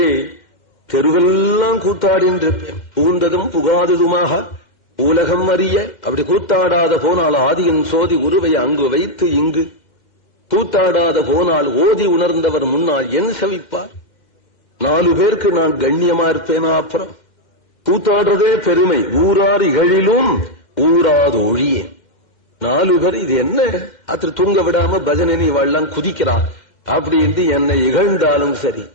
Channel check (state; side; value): late; right; 2.1 ms